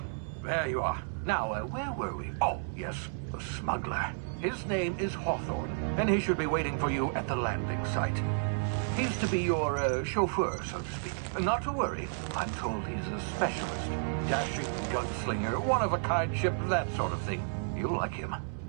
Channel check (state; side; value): silent; left; 56 dB below the other